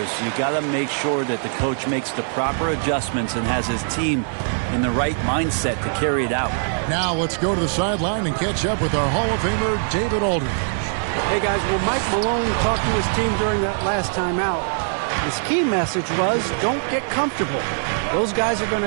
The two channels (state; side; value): silent; left; digital silence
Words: You got to make sure that the coach makes the proper adjustments and has his team in the right mindset to carry it out. Now let's go to the sideline and catch up with our Hall of Famer, David Aldridge. Hey, guys, well, Mike Malone talked to his team during that last time out. His key message was, don't get comfortable. Those guys are going